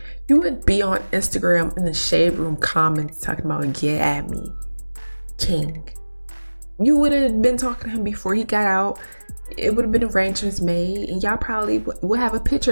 you would be on Instagram in the Shade Room comments talking about get at me, King. You would have been talking to him before he got out. It would have been arrangements made, and y'all probably would have a picture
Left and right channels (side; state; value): both; inverted; correlation -1.00